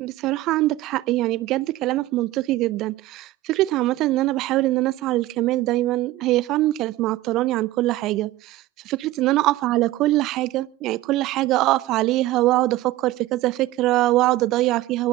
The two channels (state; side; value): quieter; left; 16.6 dB